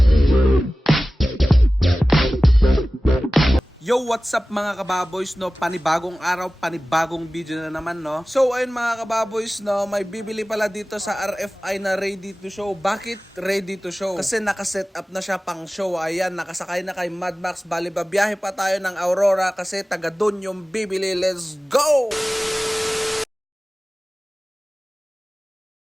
Yo, what's up mga kababoys, no? Panibagong araw, panibagong video na naman, no? So, ayun mga kababoys, no? May bibili pala dito sa RFI na ready to show. Bakit ready to show? Kasi nakaset up na siya pang show. Ayan, nakasakay na kay Mad Max. Bali, babiyahe pa tayo ng Aurora kasi taga dun yung bibili. Let's go!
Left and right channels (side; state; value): both; normal; correlation 0.97